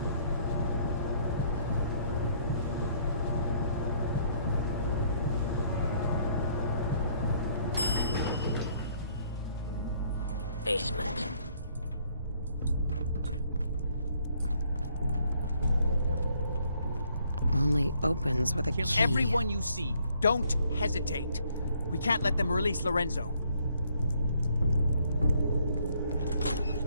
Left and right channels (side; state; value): both; inverted; correlation -0.66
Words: Basement. only opens with a Kill key. everyone you see. Don't hesitate. We can't let them release Lorenzo.